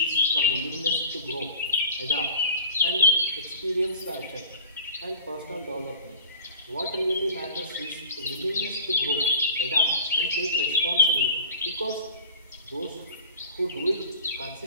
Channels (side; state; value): both; inverted; correlation -0.40